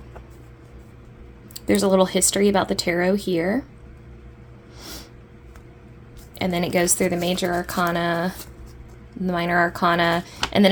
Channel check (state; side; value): identical; both; correlation 1.00